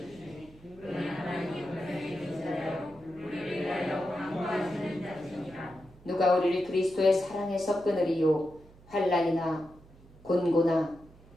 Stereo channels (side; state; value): right; noise; hum, 24 dB below the sound